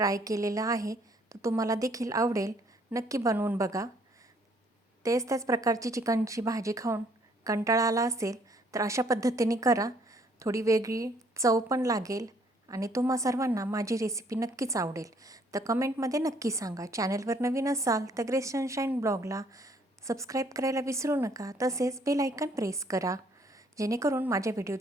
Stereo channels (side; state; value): both; normal; correlation 0.64